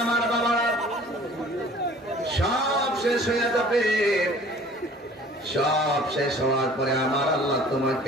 আমার বাবারা, সব শেষ হয়ে যাবে। সব শেষ হওয়ার পরে আমার আল্লাহ তোমাকে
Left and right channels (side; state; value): both; normal; correlation 0.50